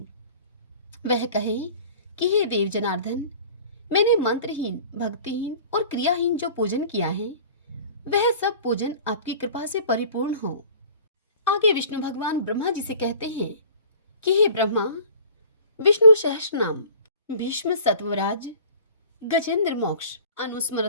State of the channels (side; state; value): both; inverted; correlation -0.45